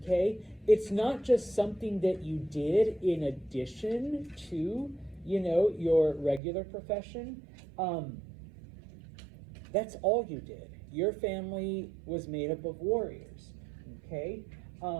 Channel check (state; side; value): drops out; left; at 6.4 s